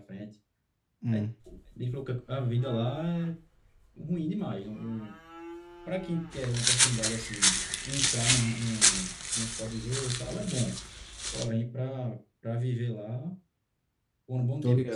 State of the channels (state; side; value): identical; both; correlation 1.00